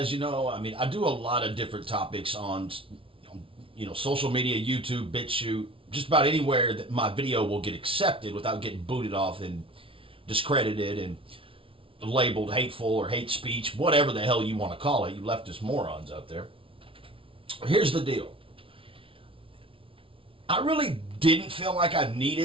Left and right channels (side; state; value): left; late; 0.26 ms